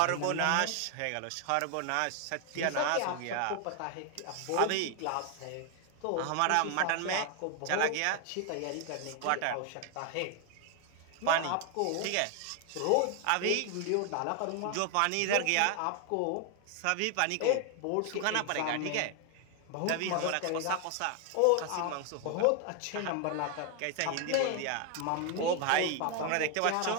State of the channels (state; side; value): different; both; correlation 0.01